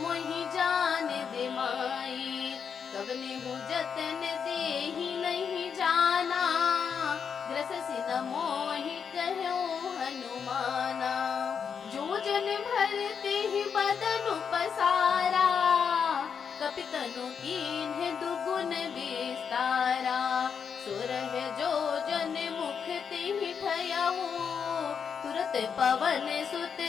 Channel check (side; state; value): right; quieter; 6.8 dB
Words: मोहि जान दे माई। कबने हूँ जतन देहि नहीं जाना ग्रससि न मोहि कहूँ हनुमाना। जो जन भरते ही बदन पसारा कपितनु कीन्ह दुगुन विस्तारा। सुरह जो जन मुख तिहि ठयऊ तुरत पवन सुत